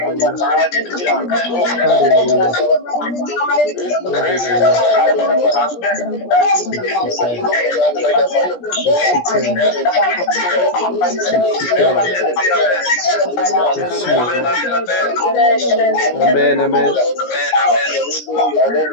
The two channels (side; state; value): right; late; 17 ms